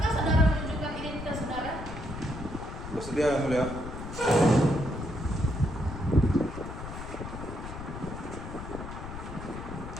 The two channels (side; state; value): left; noise; rumble, 9 dB below the sound